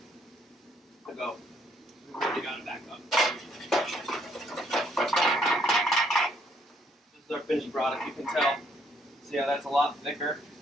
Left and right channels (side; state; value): both; normal; correlation 0.69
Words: to go. We've already got it back up. This is our finished product. You can tell. See how that's a lot thicker